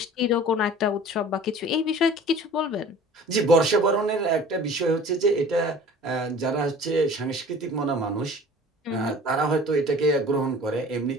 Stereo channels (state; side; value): normal; both; correlation 0.45